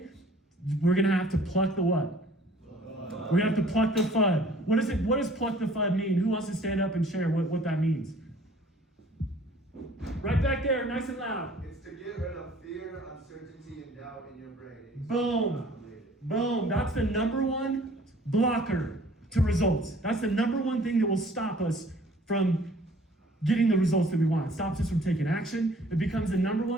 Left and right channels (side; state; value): both; normal; correlation 0.54